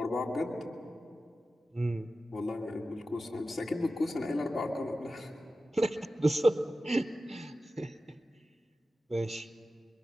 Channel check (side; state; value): both; normal; correlation 0.93